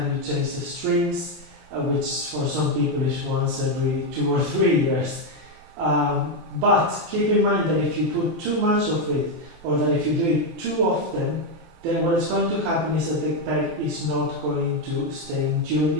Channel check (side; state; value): left; late; 23 ms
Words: you change the strings, which for some people is once every 2 or 3 years. But keep in mind that if you put too much of it, or that if you do it too often, then what is going to happen is that the peg is not going to stay in tune,